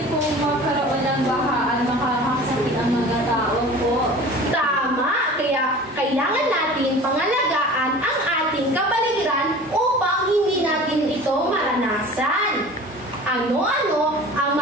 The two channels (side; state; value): both; normal; correlation 0.41